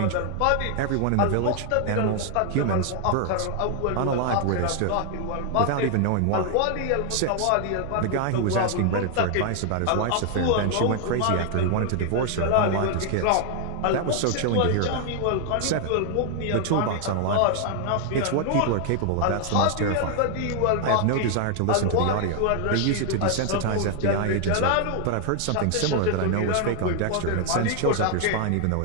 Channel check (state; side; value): different; both; correlation 0.00